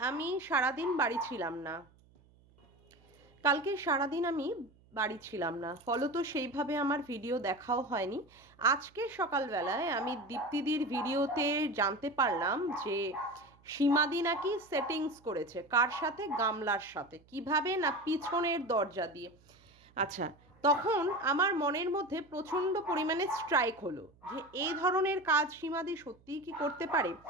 আমি সারাদিন বাড়ি ছিলাম না। বাড়ি ছিলাম না, ফলত সেইভাবে আমার ভিডিও দেখাও হয়নি। আজকে সকালবেলায় আমি দীপ্তিদির ভিডিওতে জানতে পারলাম যে সীমাদি নাকি সেটিংস করেছে। কার সাথে? গামলার সাথে। কিভাবে? না পিছনের দরজা দিয়ে। আচ্ছা, তখন আমার মনের মধ্যে প্রচণ্ড পরিমাণে স্ট্রাইক হলো যে এই ধরনের কাজ সীমাদি সত্যিই কি করতে পারে।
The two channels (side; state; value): right; noise; hum, 29 dB below the sound